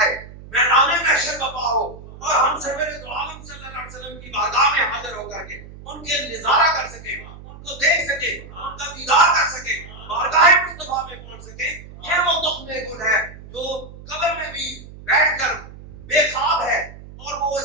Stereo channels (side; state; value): right; noise; hum, 16 dB below the sound